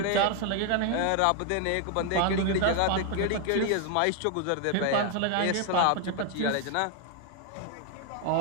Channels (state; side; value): different; both; correlation 0.01